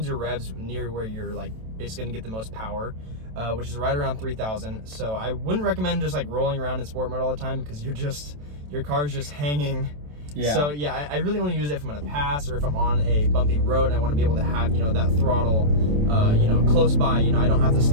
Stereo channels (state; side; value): late; left; 27 ms